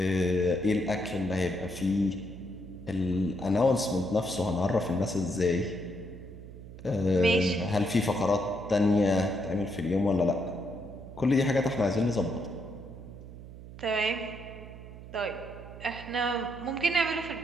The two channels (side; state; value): right; noise; hum, 14 dB below the sound